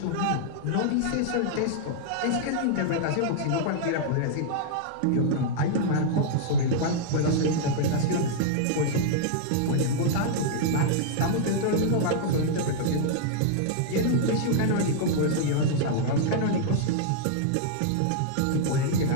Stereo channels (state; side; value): different; both; correlation -0.01